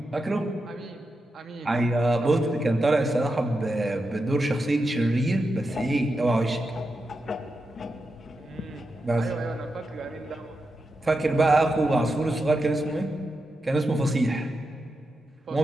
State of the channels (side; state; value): both; normal; correlation 0.88